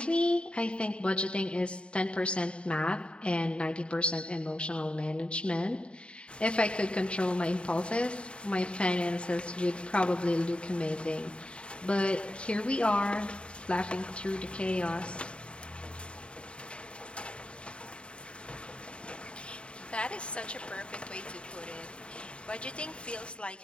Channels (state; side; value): late; right; 0.055 ms